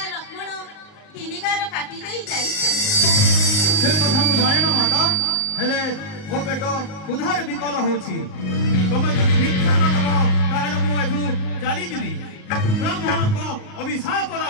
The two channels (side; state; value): right; late; 38 ms